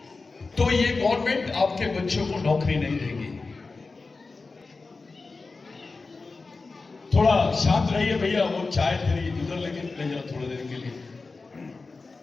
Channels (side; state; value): right; quieter; 3.9 dB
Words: तो ये गवर्नमेंट आपके बच्चों को नौकरी नहीं देगी। थोड़ा शांत रहिए भैया, वो चाय तेरी इधर लेके ले जाओ थोड़ी देर के लिए।